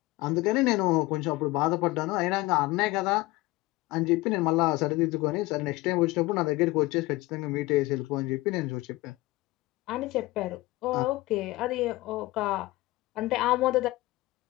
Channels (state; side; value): quieter; right; 19.9 dB